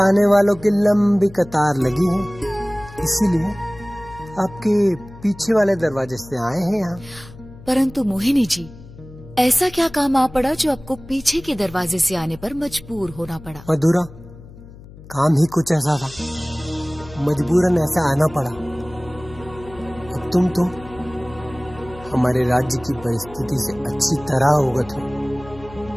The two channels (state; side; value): noise; left; hum, 19 dB below the sound